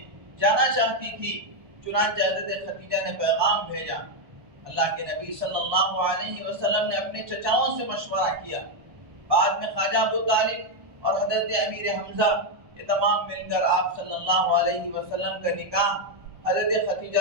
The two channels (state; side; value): late; left; 1.3 ms